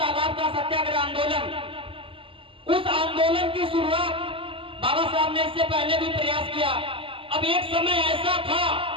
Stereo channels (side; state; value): left; late; 0.26 ms